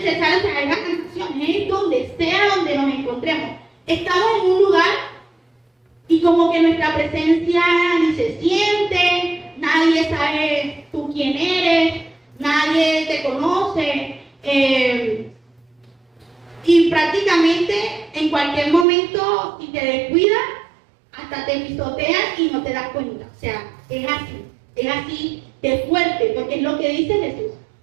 ser sal, o sea, es la canción, es donde sea donde nos encontremos. Estamos en un lugar y como que nuestra presencia ni se siente, nadie sabe tú quién eres, nadie te conoce, y prácticamente en cualquier momento, si te descuidas, hasta te pisotean y no te das cuenta. O sea, es así de fuerte, porque es lo que dice Jesús.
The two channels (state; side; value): drops out; left; at 18.9 s